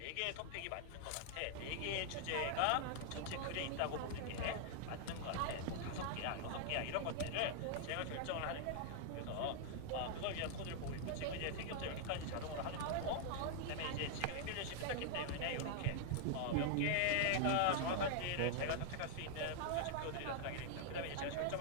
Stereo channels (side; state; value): both; different; correlation 0.00